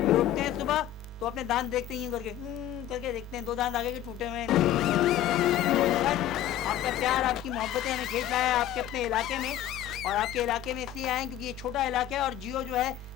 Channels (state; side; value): quieter; right; 11.6 dB